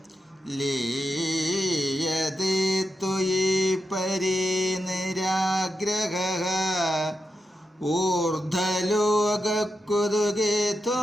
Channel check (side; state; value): both; normal; correlation 0.87